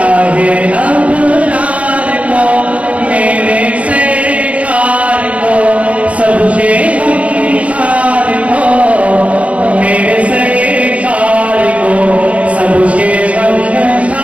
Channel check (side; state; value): left; late; 0.064 ms